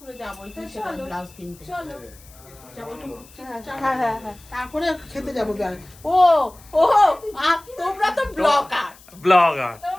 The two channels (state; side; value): noise; left; hiss, 24 dB below the sound